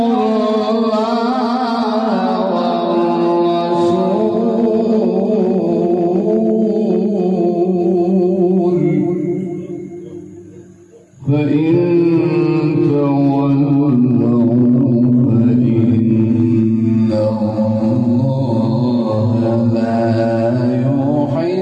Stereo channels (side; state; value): both; identical; correlation 1.00